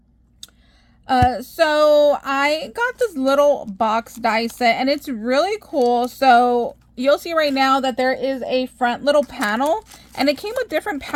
So I got this little box die set and it's really cool. So you'll see right now that there is a front little panel and it came with different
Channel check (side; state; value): both; identical; correlation 1.00